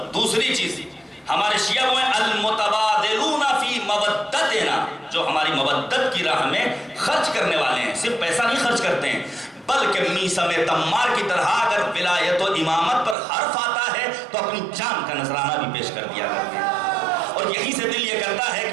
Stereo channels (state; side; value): drops out; left; at 13.2 s